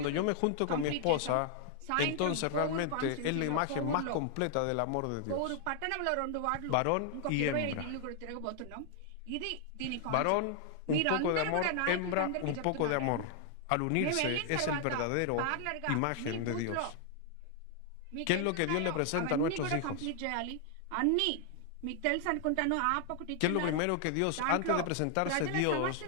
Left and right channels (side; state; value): both; different; correlation 0.00